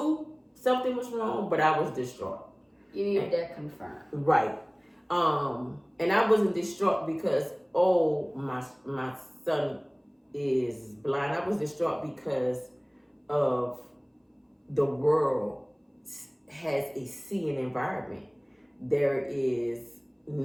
something was wrong, but I was distraught. You needed that confirmed. Right. And I wasn't distraught because my son is blind. I was distraught because of the world has a seeing environment. There is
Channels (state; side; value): identical; both; correlation 1.00